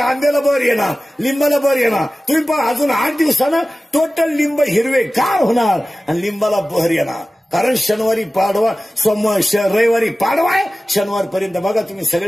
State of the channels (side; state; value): both; normal; correlation 0.96